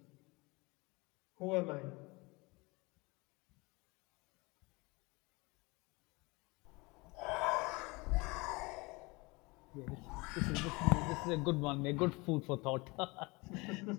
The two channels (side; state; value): right; quieter; 25.2 dB